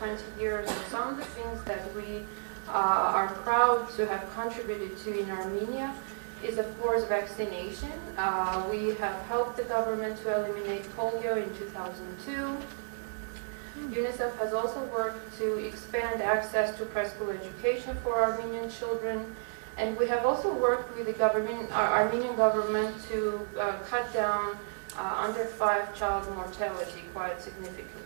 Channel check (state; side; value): silent; left; digital silence